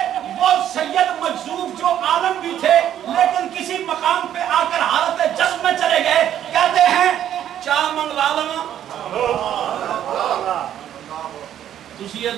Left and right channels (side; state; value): left; quieter; 10.7 dB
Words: وہ سید مجذوب جو عالم بھی تھے لیکن کسی مقام پہ آ کر حالت جذب میں چلے گئے کہتے ہیں چاہ منگوا لواں تسی یہ